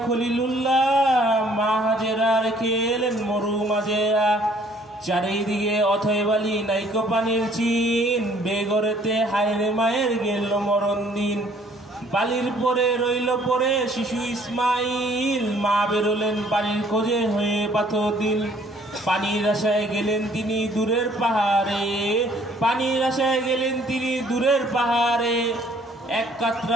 খলিলুল্লাহ, মা হাজেরা রেখে এলেন মরু মাজেরা। চারিদিকে অথয় বালি নাইকো পানির চিন, বেগরেতে হায়রে মায়ের গেল মরণ দিন। বালির পরে রইল পরে শিশু ইসমাইল, মা বেরোলেন পানির খোঁজে হয়ে পাথর দিল। পানির আশায় গেলেন তিনি দূরের পাহাড়ে, পানির আশায় গেলেন তিনি দূরের পাহাড়ে। এক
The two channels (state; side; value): normal; both; correlation 0.60